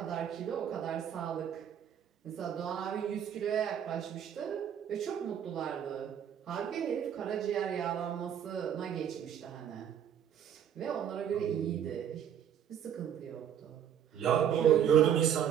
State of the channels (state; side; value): quieter; left; 9.2 dB